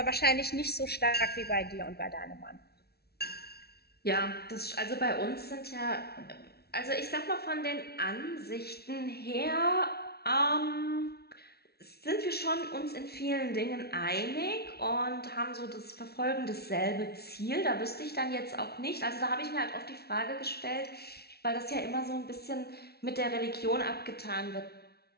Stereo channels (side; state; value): right; late; 0.46 ms